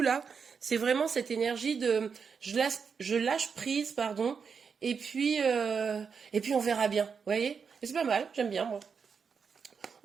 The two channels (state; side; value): quieter; left; 6.0 dB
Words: là, c'est vraiment cette énergie de je lâche prise, pardon, et puis on verra bien. Vous voyez? Et c'est pas mal, j'aime bien moi.